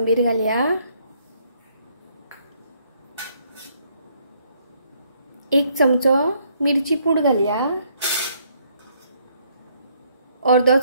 घालया। 1 चमचो मिरची पूड घालया। अर्धो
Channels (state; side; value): inverted; both; correlation -0.69